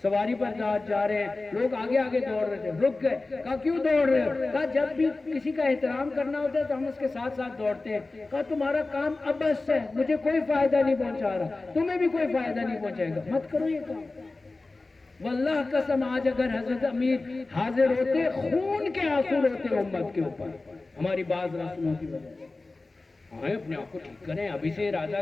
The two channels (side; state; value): right; quieter; 3.3 dB